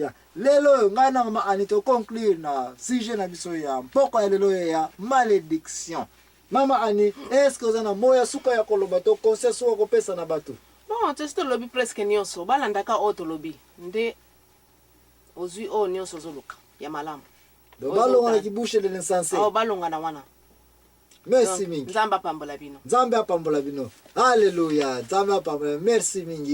lelo oyo ngai na mama ani toconclure na sujet na biso ya mpoko ya lelo oyo ya malédiction. Mama ani eske oza na moya suka ya koloba to conseil suka kopesa na bato? Bon tosi tolobi presque nyonso balandaka oyo tolobi nde ozwi oyo nyonso ozoluka ya malamu balonga na kibushe de l'insensé balonga na wana. Merci mingi. Nzambe apambola bino. Nzambe apambola bino. Alléluia. Nzambe apambola. Merci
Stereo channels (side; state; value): both; identical; correlation 1.00